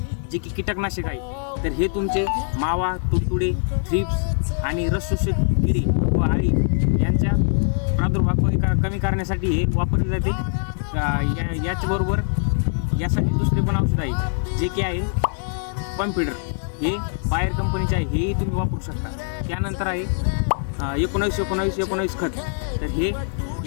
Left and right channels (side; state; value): right; silent; 61 dB below the other